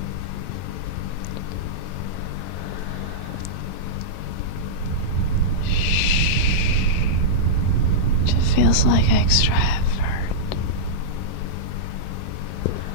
It just feels like extra effort.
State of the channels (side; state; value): right; late; 11 ms